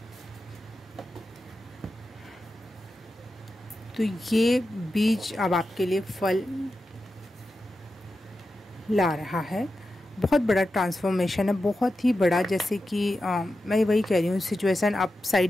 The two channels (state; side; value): normal; both; correlation 0.91